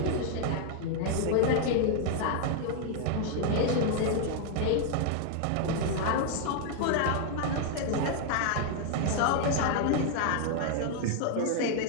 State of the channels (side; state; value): both; different; correlation 0.00